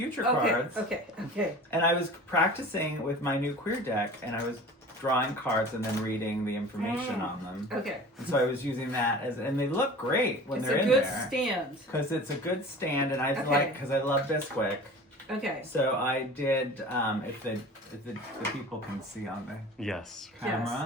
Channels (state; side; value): normal; both; correlation 0.40